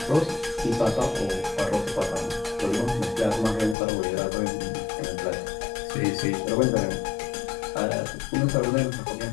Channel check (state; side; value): drops out; right; at 3.8 s